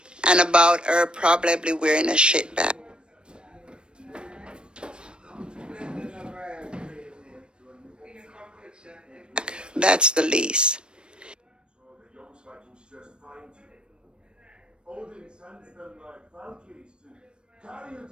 and about her probably wearing a shit bag. That's the least.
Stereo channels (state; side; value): late; left; 0.054 ms